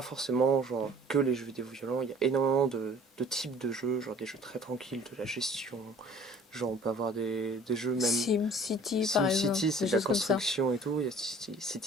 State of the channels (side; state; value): both; normal; correlation 0.50